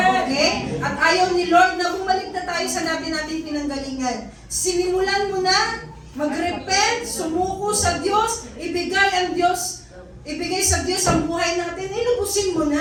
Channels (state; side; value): identical; both; correlation 1.00